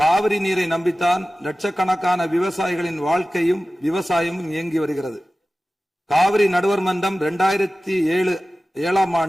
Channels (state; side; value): normal; both; correlation 0.96